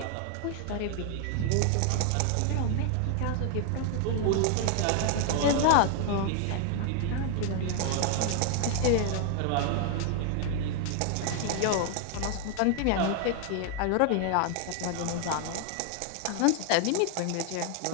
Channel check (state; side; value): different; both; correlation 0.00